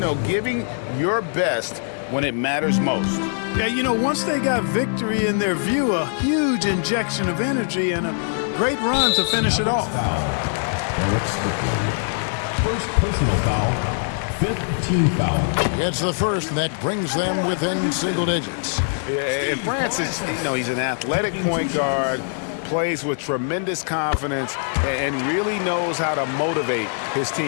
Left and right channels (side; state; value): right; silent; 64 dB below the other